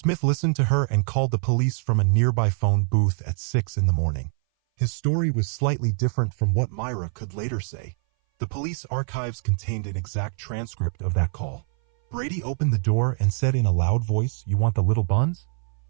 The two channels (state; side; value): silent; left; 59 dB below the other